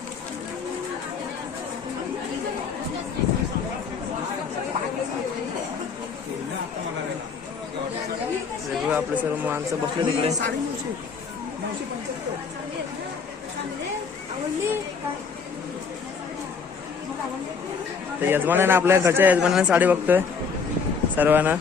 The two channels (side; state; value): right; quieter; 5.6 dB